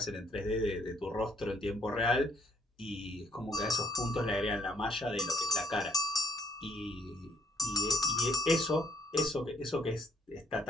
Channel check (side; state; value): both; normal; correlation 0.67